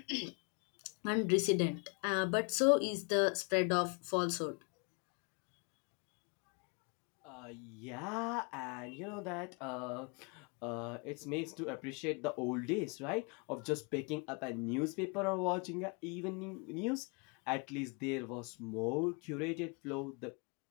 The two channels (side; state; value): right; quieter; 33.8 dB